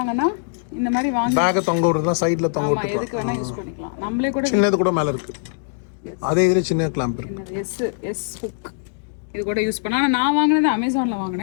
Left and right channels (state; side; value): silent; right; digital silence